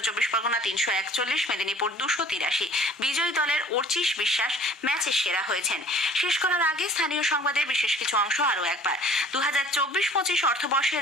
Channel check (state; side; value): normal; both; correlation 0.51